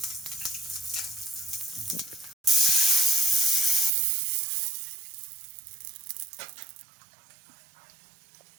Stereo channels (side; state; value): left; drops out; at 3.9 s